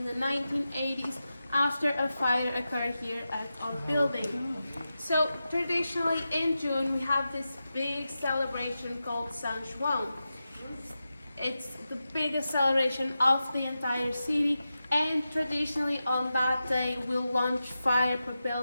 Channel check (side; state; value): both; inverted; correlation -0.92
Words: the 1980s after a fire occurred here at our building. So traditionally in June we have this big celebration called San Juan. It's the biggest celebration of the entire city, and traditionally on that day we'll launch